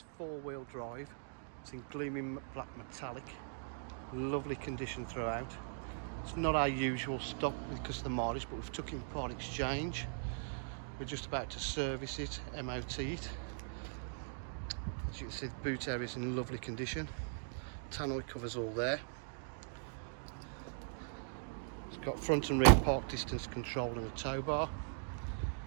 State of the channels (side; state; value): left; silent; digital silence